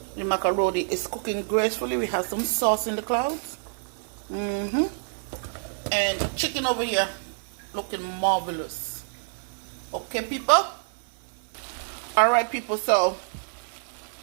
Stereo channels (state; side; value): silent; left; 60 dB below the other